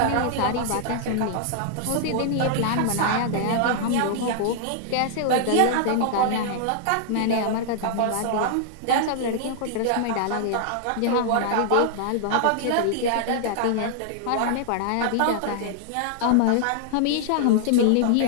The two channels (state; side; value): different; both; correlation -0.01